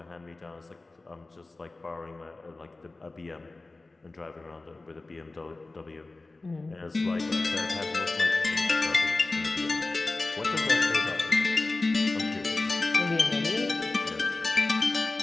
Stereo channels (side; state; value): right; quieter; 3.3 dB